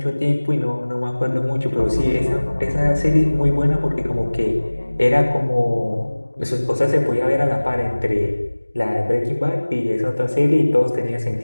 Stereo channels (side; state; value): both; inverted; correlation -1.00